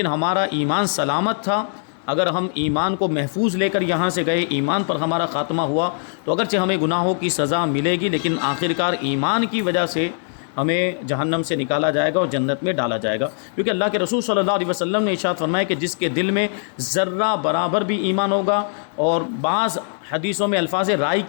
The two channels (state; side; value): silent; right; digital silence